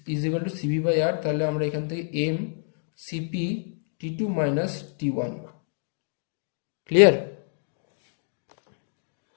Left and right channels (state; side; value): silent; right; digital silence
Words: is equal to CV by R, তাহলে আমরা এখান থেকে MCP T2 - T1। ক্লিয়ার?